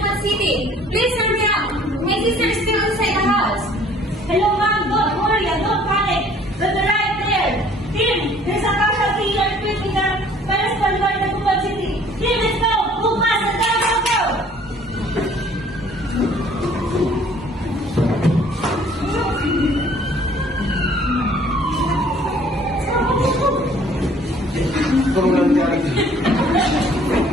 City. Please turn me up. My sister is still inside the house. Hello, ma'am. Don't worry. Don't panic. We'll be right there. Team, there's a casualty earthquake in the Paris, Bolivar, Dagupan City. Team, let's go. Move fast. Go. Kung lang yan.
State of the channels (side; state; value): both; normal; correlation 0.55